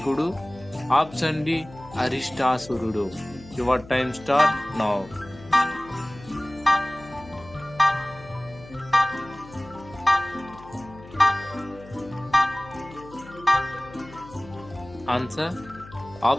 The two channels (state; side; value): noise; left; hum, 19 dB below the sound